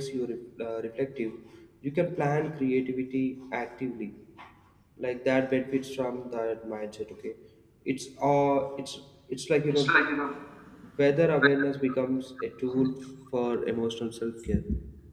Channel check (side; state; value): both; identical; correlation 1.00